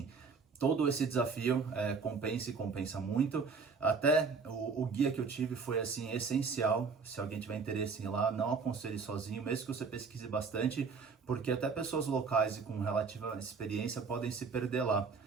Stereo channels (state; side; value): quieter; left; 5.0 dB